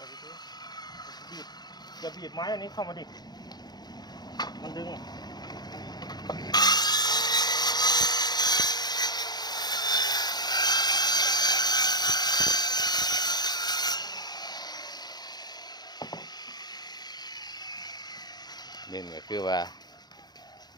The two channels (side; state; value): right; late; 0.20 ms